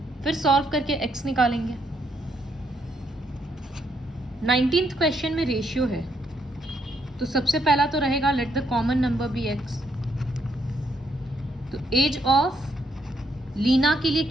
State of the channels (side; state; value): both; normal; correlation 0.75